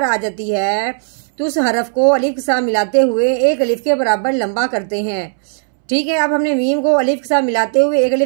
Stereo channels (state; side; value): silent; left; 69 dB below the other